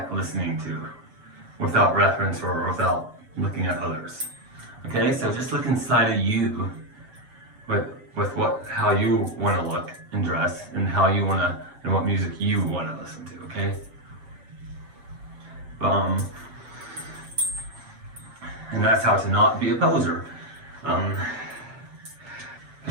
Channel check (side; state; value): left; late; 7.7 ms